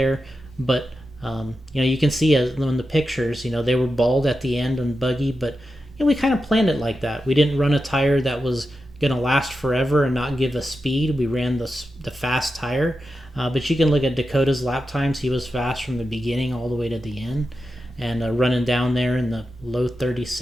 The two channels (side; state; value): both; normal; correlation 0.90